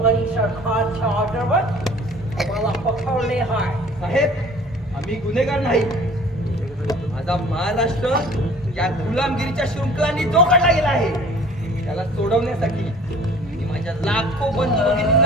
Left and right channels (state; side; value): normal; both; correlation 0.49